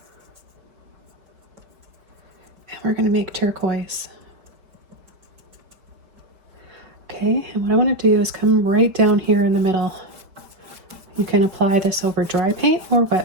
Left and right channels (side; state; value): left; late; 5.3 ms